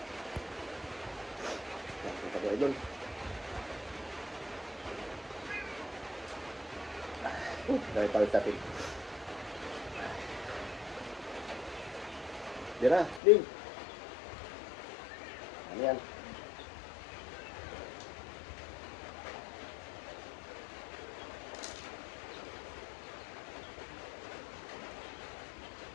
Ito ko idol. Dahil pala sa atin. Dira, Ding. Ano yan?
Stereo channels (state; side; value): drops out; right; at 13.2 s